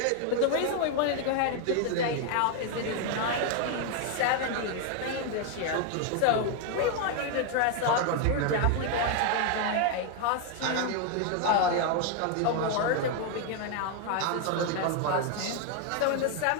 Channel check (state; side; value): different; both; correlation 0.01